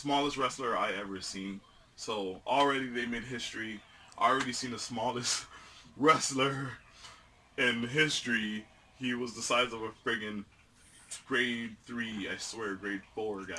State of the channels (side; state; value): both; identical; correlation 1.00